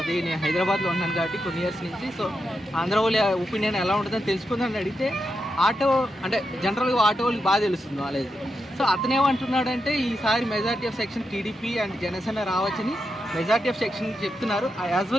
నేను హైదరాబాద్లో ఉన్నాను కాబట్టి కొన్ని ఇయర్స్ నుంచి, సో ఆంధ్ర వాళ్ళ ఒపీనియన్ ఎలా ఉంటుందని తెలుసుకుందని అడిగితే ఆటో అంటే జనరల్గా ఆటో వాళ్ళకి బాగా తెలుస్తుంది నాలెడ్జ్. సో అతనేమంటున్నాడంటే ఈసారి majority of section TDP and Janasena రావచ్చని మెజారిటీ ఆఫ్ సెక్షన్ చెప్తున్నారు, యాజ్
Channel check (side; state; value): both; normal; correlation 0.86